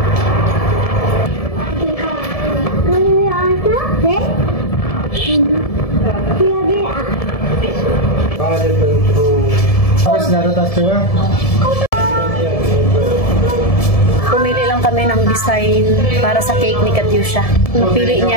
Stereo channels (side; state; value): right; late; 1.7 ms